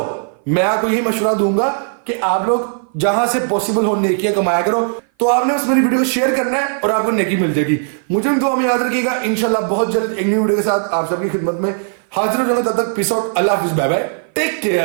मैं आपको यही मशवरा दूंगा कि आप लोग जहां से पॉसिबल हो नेकियां कमाया करो। तो आपने बस मेरी वीडियो को शेयर करना है और आपको नेकी मिल जाएगी। मुझे दुआ में याद रखिएगा। इंशाल्लाह बहुत जल्द एक न्यू वीडियो के साथ आप सबकी खिदमत में हाजिर हो जाऊंगा। तब तक पीस आउट, अल्लाह हाफिज, बाय बाय, टेक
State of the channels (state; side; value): silent; left; 57 dB below the other